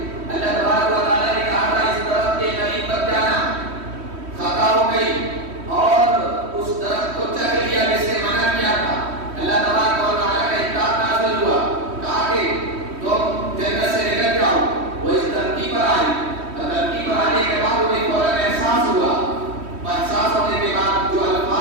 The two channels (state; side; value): late; left; 3.1 ms